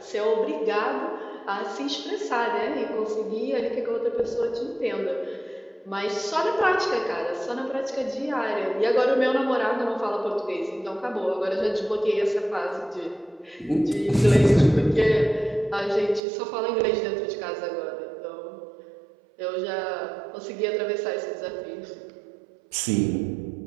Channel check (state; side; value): drops out; left; at 16.2 s